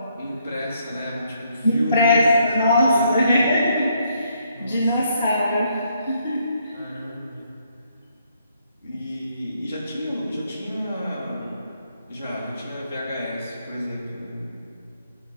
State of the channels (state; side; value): inverted; both; correlation -0.72